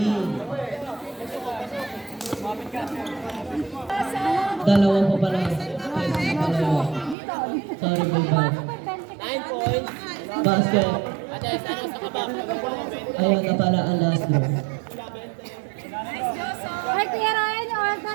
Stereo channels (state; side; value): drops out; left; at 7.2 s